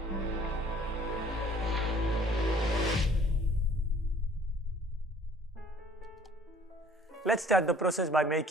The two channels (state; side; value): normal; both; correlation 0.55